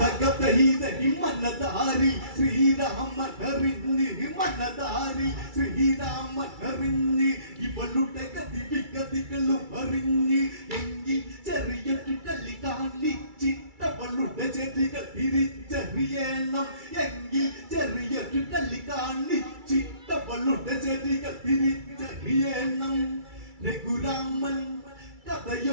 മനതാരി ശ്രീരാമനറിഞ്ഞ് മനതാരി ശ്രീരാമനറിഞ്ഞ് ഇവളുടെ ഗതിവിഗതികളും അറിഞ്ഞ് എങ്കിൽ ചെറിയൊരു കളി കാണിച്ചിട്ടവളുടെ ചെടികൾ തിരിച്ചറിയണം എങ്കിൽ ചെറിയൊരു കളി കാണിച്ചിട്ടവളുടെ ചെടികൾ തിരിച്ചറിയണം രഘുരാമൻ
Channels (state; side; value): late; left; 2.3 ms